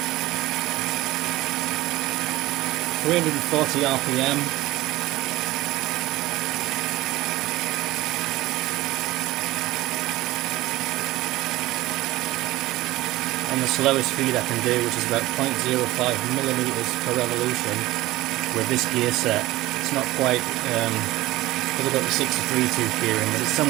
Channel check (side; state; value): left; quieter; 17.8 dB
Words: 340 RPM. On the slowest speed I can do, which is about 0.05 millimeters per revolution with this gear set. It's not quite, because I've got the 63 tooth gear in, but it's